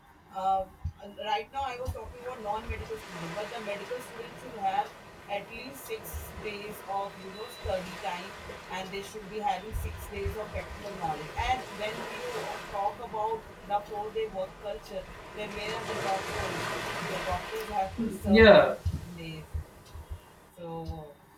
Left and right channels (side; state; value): both; identical; correlation 1.00